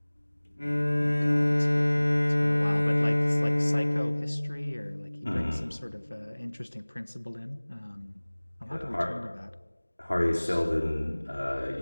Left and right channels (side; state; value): both; inverted; correlation -1.00